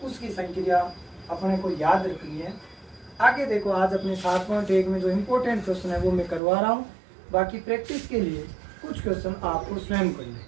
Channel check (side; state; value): left; drops out; at 6.4 s